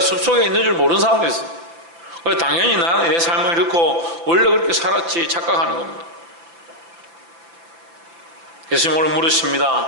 있는 줄 모르는 사람도 있어요. 당연히 나는 내 삶을 잃고 원래 그렇게 살았지 착각하는 겁니다. 예수님 오늘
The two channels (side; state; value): left; late; 5.9 ms